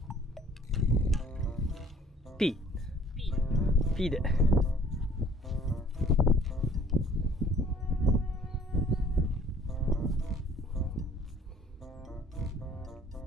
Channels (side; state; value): both; normal; correlation 0.55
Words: P。P で。